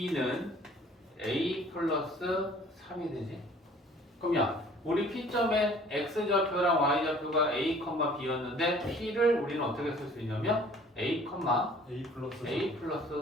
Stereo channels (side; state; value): both; normal; correlation 0.52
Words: A 플러스 3이 되지? 그러면 우리 P점의 X좌표랑 Y좌표가 A, B였는데 P를 우리는 어떻게 쓸 수 있냐면 A, A 플러스. A 플러스